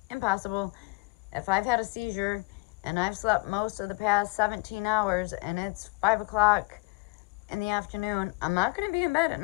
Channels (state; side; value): quieter; right; 27.4 dB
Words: impossible. If I've had a seizure and I've slept most of the past 17 hours and it's 5 o'clock in the afternoon, I'm not going to be in bed at